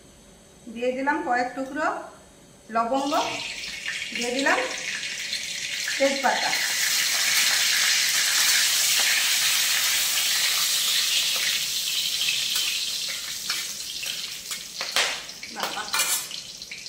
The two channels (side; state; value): both; identical; correlation 1.00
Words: দিয়ে দিলাম কয়েক টুকরো লবঙ্গ, দিয়ে দিলাম তেজপাতা।